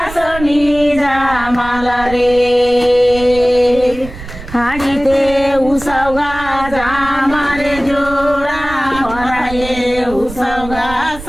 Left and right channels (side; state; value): right; noise; rumble, 13 dB below the sound